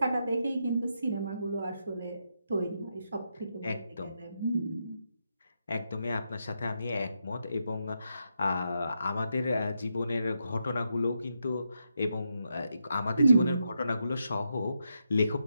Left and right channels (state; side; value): inverted; both; correlation -0.83